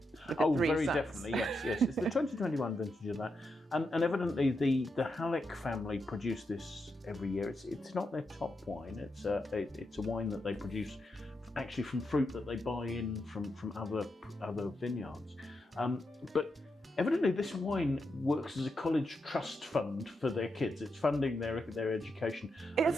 Oh, very definitely, yes. It's the 2021 vintage of that. And evidently the Halleck family produce this every year. It's not their top wine. It's a wine that they produce actually from fruit that they buy in from other vineyards. But evidently this wine works as a college trust fund for their kids. It's funding their education. And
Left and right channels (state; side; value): normal; both; correlation 0.84